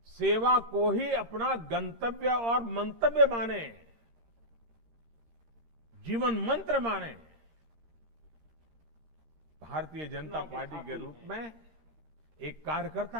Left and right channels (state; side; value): late; left; 18 ms